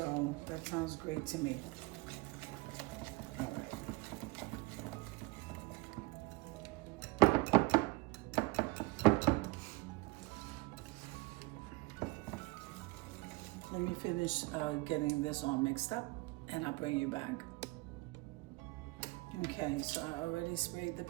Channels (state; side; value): quieter; left; 23.3 dB